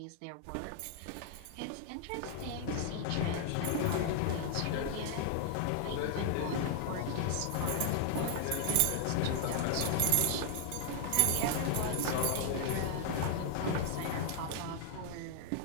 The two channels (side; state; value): both; different; correlation 0.00